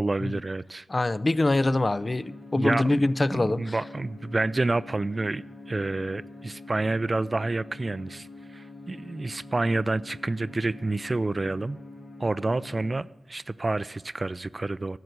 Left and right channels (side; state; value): both; normal; correlation 0.97